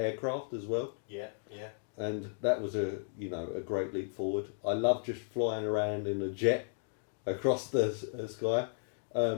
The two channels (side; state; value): right; silent; digital silence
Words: as well. Yeah. And that was a great leap forward. I love just flying around in a jet across the sky.